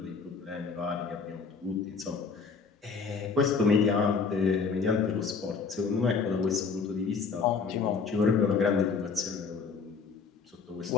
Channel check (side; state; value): right; quieter; 5.2 dB